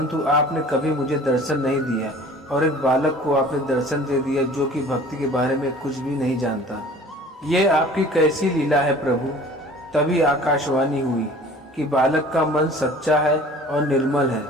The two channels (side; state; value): both; normal; correlation 0.47